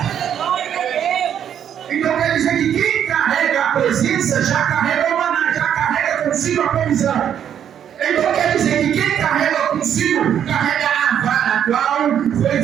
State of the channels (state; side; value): quieter; left; 9.3 dB